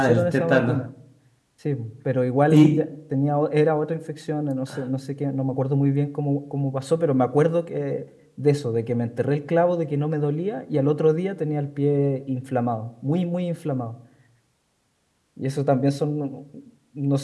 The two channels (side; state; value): both; identical; correlation 1.00